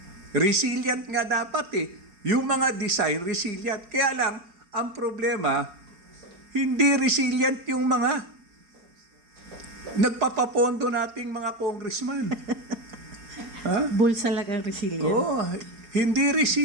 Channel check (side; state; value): left; late; 4.7 ms